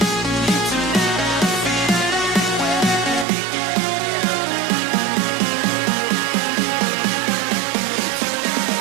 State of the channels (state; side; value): drops out; left; at 3.2 s